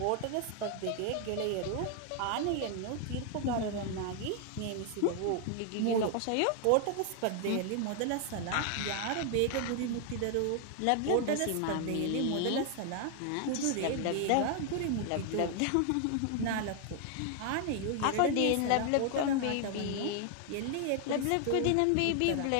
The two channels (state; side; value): different; both; correlation 0.00